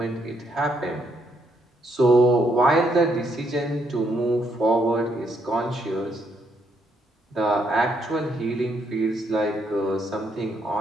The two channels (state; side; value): normal; both; correlation 0.74